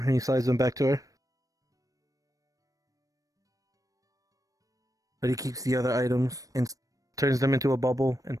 he slides them back to her. But he keeps the other items and turns them into a bubble and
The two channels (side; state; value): left; late; 0.16 ms